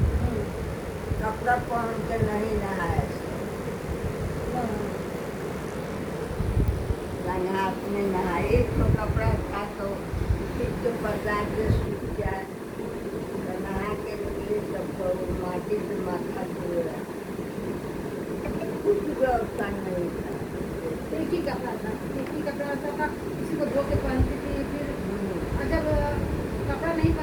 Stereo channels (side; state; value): both; identical; correlation 1.00